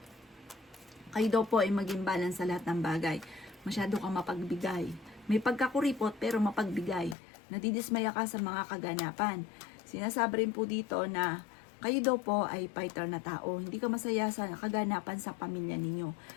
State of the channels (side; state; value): right; drops out; at 7.2 s